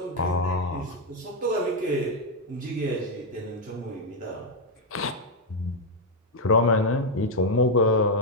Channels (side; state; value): both; normal; correlation 0.01